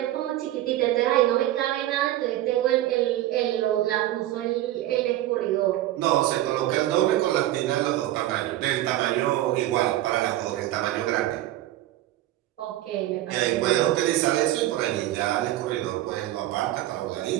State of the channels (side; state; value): left; quieter; 14.6 dB